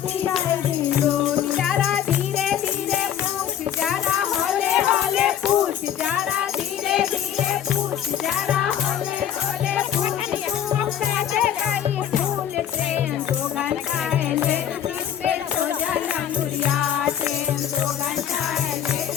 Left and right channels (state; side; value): quieter; right; 9.9 dB